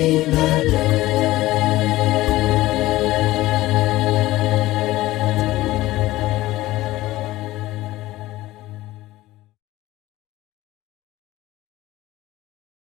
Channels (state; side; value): quieter; right; 17.1 dB